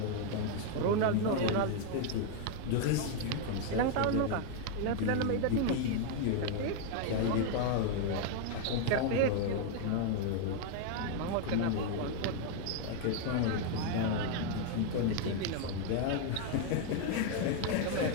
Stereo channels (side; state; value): both; different; correlation 0.00